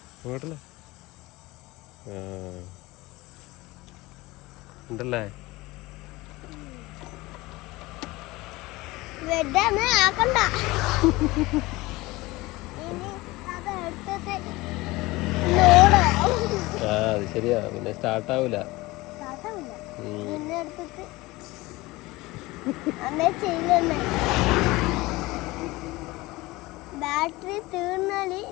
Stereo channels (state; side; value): quieter; right; 20.8 dB